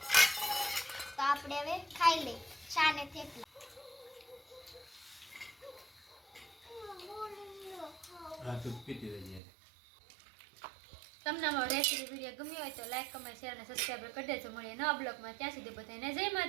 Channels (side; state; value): left; drops out; at 9.4 s